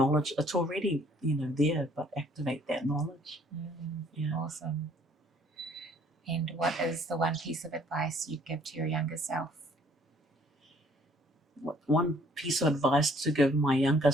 It's already there, but activate that knowledge. Yeah. Awesome. And what is the one piece of advice you'd give to your younger self? One piece of advice to give my younger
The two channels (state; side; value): normal; both; correlation 0.60